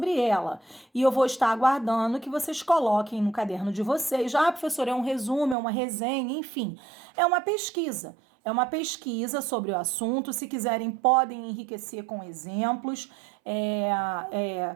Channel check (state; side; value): drops out; left; at 5.6 s